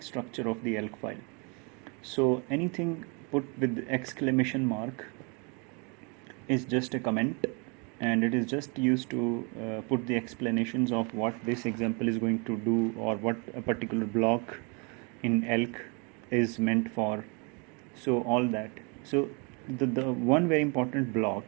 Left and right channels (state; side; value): quieter; left; 33.1 dB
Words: structure of the elk file. So anything put with exclamation mark is just a comment, and it is just used to put the explanations of what this example is going to do, or what a particular block in elk is meant for. So all that. So the one very important